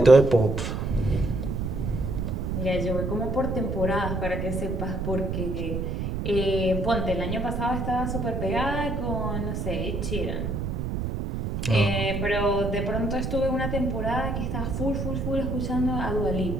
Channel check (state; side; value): noise; right; rumble, 2 dB below the sound